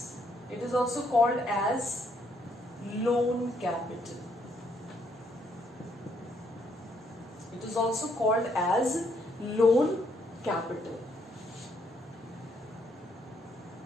it is also called as loan capital. It is also called as loan capital.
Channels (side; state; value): both; normal; correlation 0.72